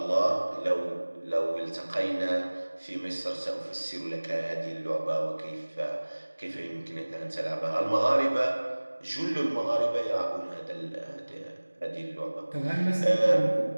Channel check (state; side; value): inverted; both; correlation -1.00